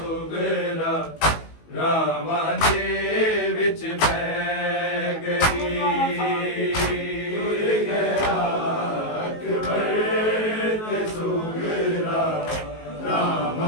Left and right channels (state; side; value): late; right; 19 ms